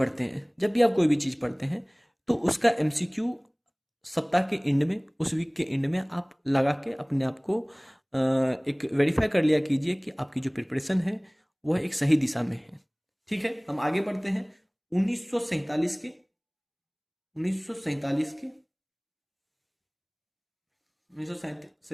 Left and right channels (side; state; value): both; identical; correlation 1.00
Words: हैं, जब भी आप कोई भी चीज पढ़ते हैं, तो उसका एमसीक्यू सप्ताह के एंड में, उस वीक के एंड में आप लगा के अपने आप को एक वेरीफाई कर लिया कीजिए कि आपकी जो प्रिपरेशन है वह एक सही दिशा में है। ठीक है, हम आगे बढ़ते हैं। 1947 के